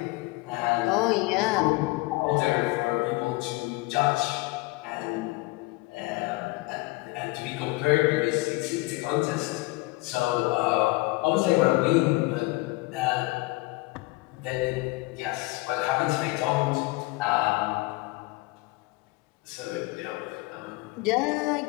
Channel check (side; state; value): right; quieter; 22.8 dB